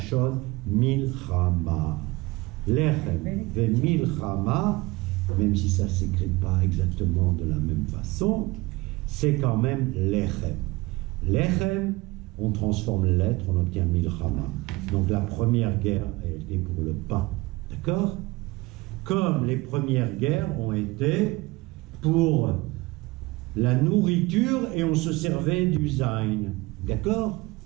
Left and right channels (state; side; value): quieter; left; 22.0 dB